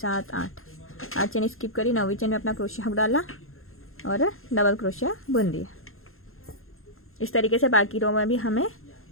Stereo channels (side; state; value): right; late; 0.61 ms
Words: 8 चेन स्किप करी। 9वीं चेन में अपना क्रोशिया हुक डाला और डबल क्रोशिया बुन दिया। इस तरीके से बाकी रो में भी हमें